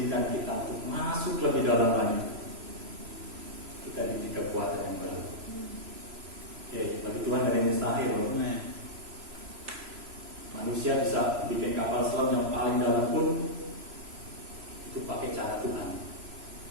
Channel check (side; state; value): left; late; 3.0 ms